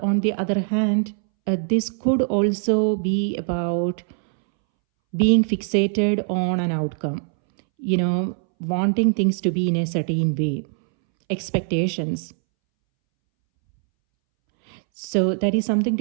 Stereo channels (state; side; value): silent; left; 64 dB below the other